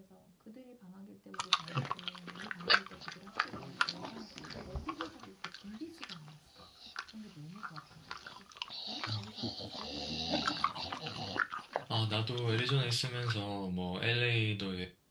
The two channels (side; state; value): both; identical; correlation 1.00